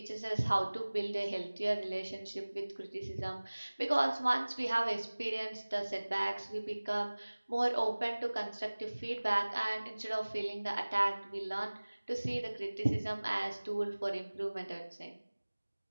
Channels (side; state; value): both; inverted; correlation -1.00